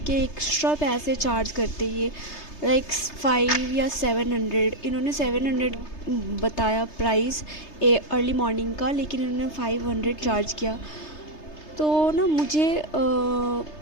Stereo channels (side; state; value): right; late; 3.3 ms